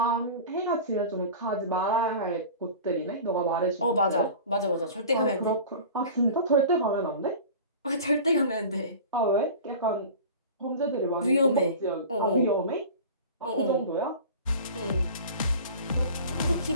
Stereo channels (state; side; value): inverted; both; correlation -0.37